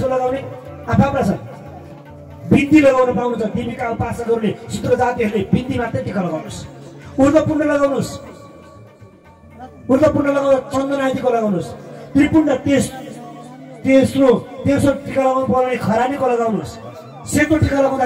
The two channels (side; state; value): both; identical; correlation 1.00